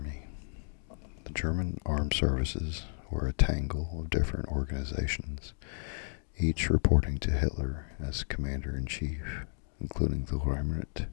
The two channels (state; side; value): silent; right; digital silence